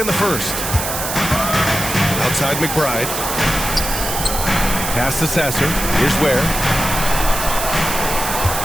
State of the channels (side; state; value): right; noise; hiss, 4 dB below the sound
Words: in the first. Outside McBride. Pass to Sasser. Here's Ware.